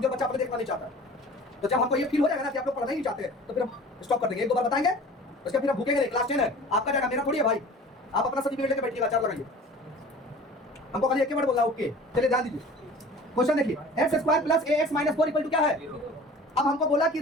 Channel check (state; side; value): normal; both; correlation 0.43